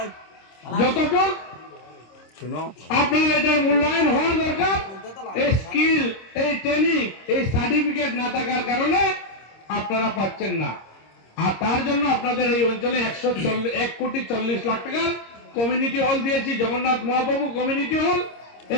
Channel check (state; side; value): late; right; 26 ms